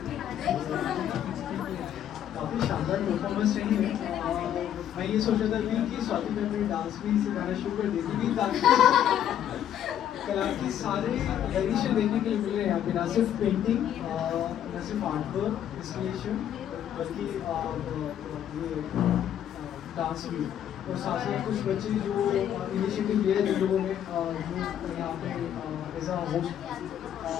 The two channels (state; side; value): quieter; right; 10.3 dB